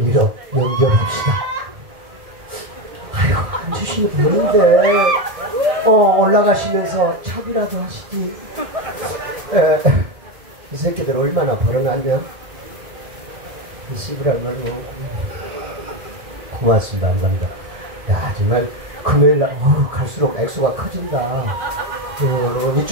연결합시다. 아이고 안 주시면 되는데 올라가시면서 차비라도 하시지. 이 새끼들 얼마나 벌어놨냐? 이 씨부랄 말이요. 고맙습니다. 감사합니다. 야 정말 금요일날 갈수록 액수가 커진다.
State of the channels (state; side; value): late; left; 1.7 ms